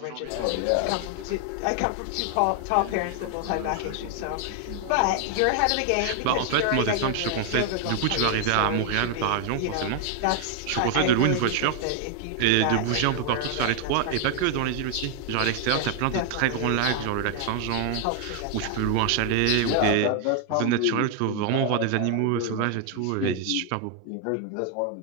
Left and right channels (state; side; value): different; both; correlation 0.00